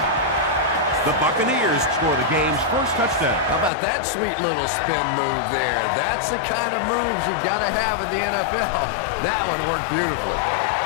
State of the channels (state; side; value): drops out; right; at 3.7 s